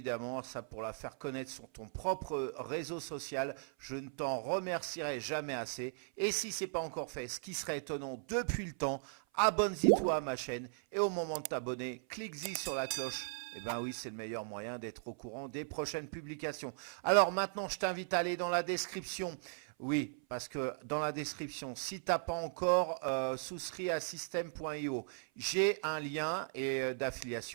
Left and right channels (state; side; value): silent; left; 53 dB below the other